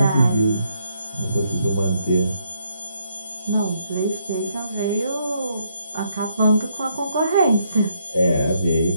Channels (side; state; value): both; inverted; correlation -0.74